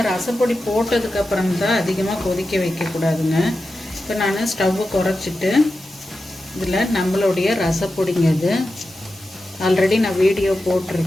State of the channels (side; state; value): both; normal; correlation 0.91